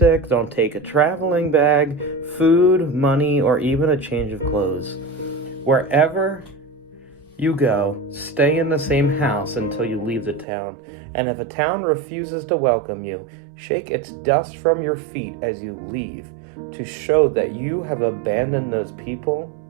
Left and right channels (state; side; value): drops out; left; at 10.5 s